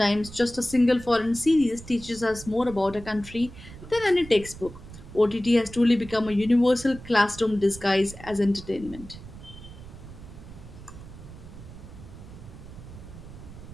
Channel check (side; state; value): right; noise; rumble, 15 dB below the sound